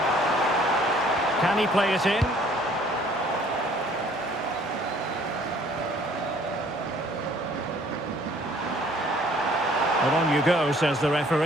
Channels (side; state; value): both; normal; correlation 0.57